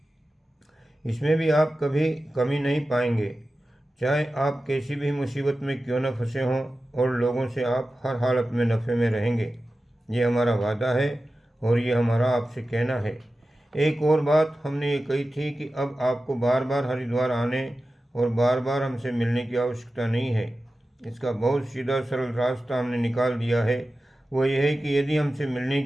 इसमें भी आप कभी कमी नहीं पाएंगे, चाहे आप कैसी भी मुसीबत में क्यों न फंसे हों, और लोगों से आप हर हालत में नफ़े में रहेंगे। ये हमारा वादा है और ये हमारा आपसे कहना है। एक और बात हमने ये कही थी कि अब आपको बार बार हरिद्वार आने और बार बार हमसे मिलने की आवश्यकता नहीं है। इसका बहुत सीधा सरल रास्ता हमने निकाल दिया है। वो ये है कि यदि हमसे मिलने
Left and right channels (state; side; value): normal; both; correlation 0.94